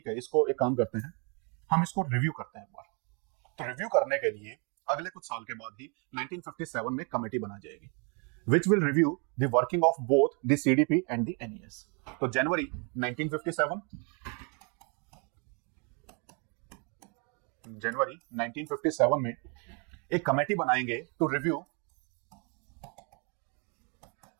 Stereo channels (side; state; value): left; quieter; 35.3 dB